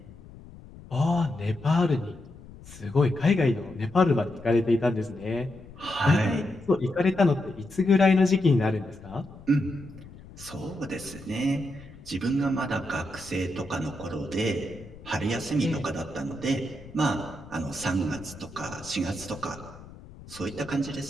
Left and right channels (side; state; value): left; noise; rumble, 18 dB below the sound